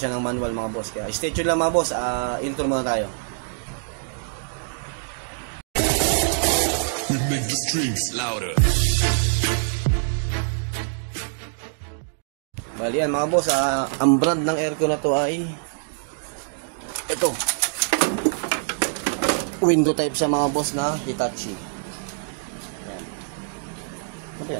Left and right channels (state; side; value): silent; left; digital silence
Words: ng manual mga boss. Kaya stay tuned lang mga boss. Intro muna tayo. Louder. Bali yan mga boss, ang brand ng aircon na to ay ito, window type siya mga boss na Hitachi. Yan. Ito